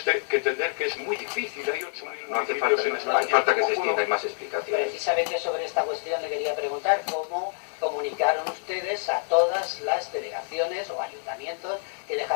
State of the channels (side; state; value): right; silent; 60 dB below the other